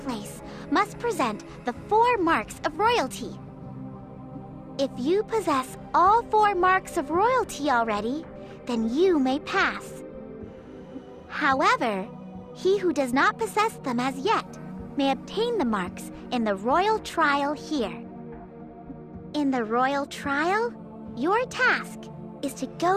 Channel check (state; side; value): identical; both; correlation 1.00